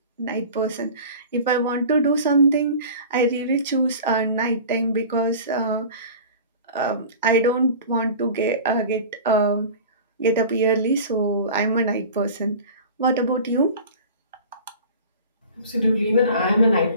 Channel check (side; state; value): both; inverted; correlation -0.39